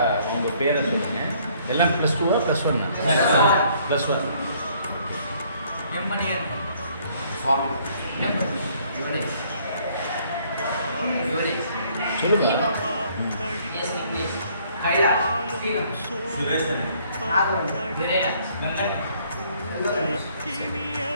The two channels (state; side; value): inverted; both; correlation -0.63